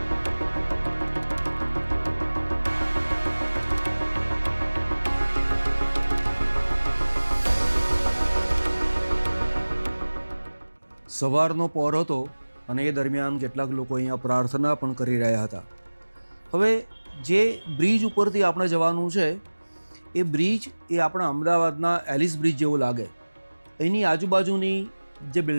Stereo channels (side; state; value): both; inverted; correlation -1.00